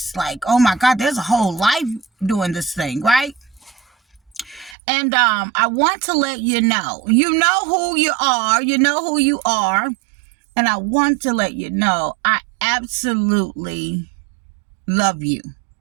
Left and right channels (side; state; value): left; drops out; at 4.8 s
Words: Like, oh my God, there's a whole life doing this thing, right? And I want to let you know who you are. You know who you are. And I want to let you know I absolutely love you.